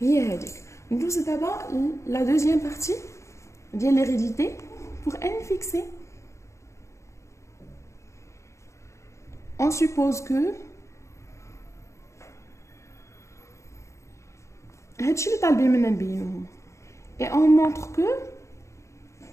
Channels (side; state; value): right; late; 0.14 ms